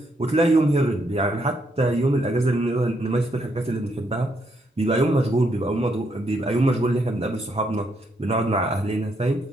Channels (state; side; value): normal; both; correlation 0.76